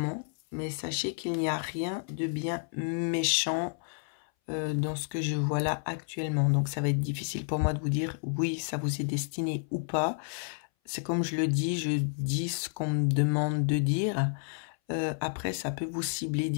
mais sachez qu'il n'y a rien de bien méchant dans ce que je vois là actuellement. Donc ça va être difficile pour moi de vous dire oui, ça vous est destiné ou pas. C'est comme je le dis, je dis ce qu'on me demande de dire. Après, ça peut vous cibler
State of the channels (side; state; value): right; silent; 57 dB below the other